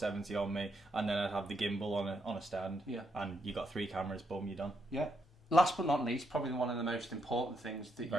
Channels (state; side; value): normal; both; correlation 0.78